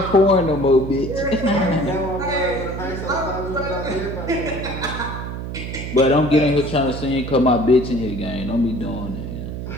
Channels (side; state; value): right; noise; hum, 7 dB below the sound